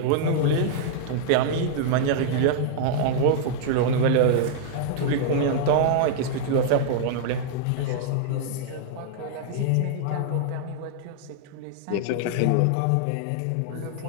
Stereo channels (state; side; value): different; both; correlation -0.01